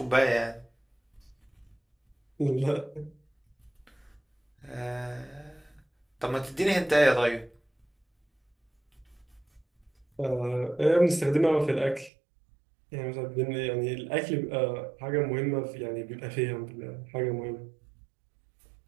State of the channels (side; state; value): left; drops out; at 12.1 s